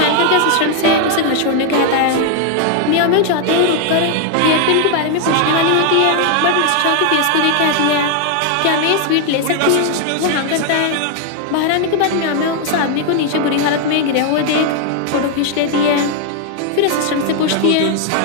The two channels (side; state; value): both; different; correlation 0.00